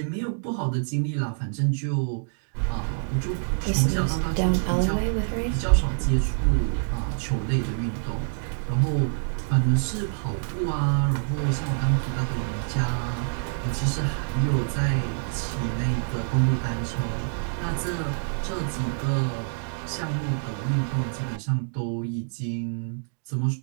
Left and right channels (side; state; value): left; silent; digital silence